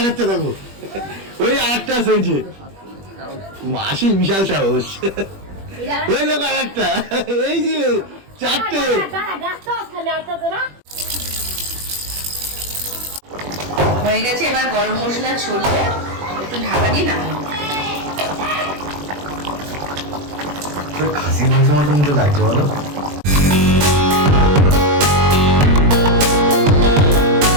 খাচ্ছে দেখো, ওই আরেকটা আছে, ওই যে মাসি বিশাল সাহস, ওই দেখো আরেকটা, এই যে চারটে। হয়ে গেছে, এবার গরম মশলা ছড়িয়ে একটু ঢাকা দিয়ে নামাবো। খাসি মাংস মতন তো লাগছে বলো।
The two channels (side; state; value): left; late; 21 ms